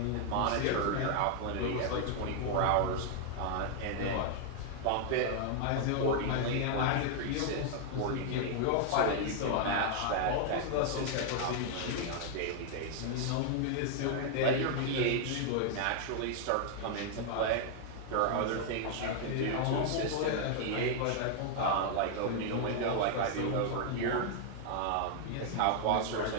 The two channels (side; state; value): both; different; correlation 0.00